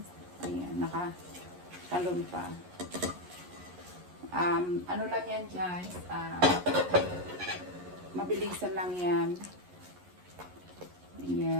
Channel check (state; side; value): late; left; 11 ms